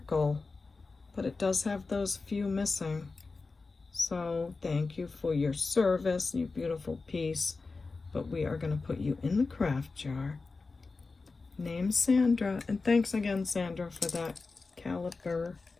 But it does have those few missing. So thank you for your service, you beautiful piece. But we are going to put you in the craft jar. Name Sandra. And thanks again, Sandra, for that caliber.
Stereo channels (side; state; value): right; quieter; 4.0 dB